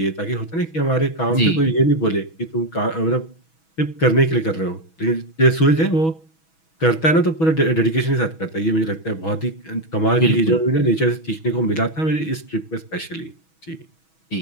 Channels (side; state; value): right; late; 6.2 ms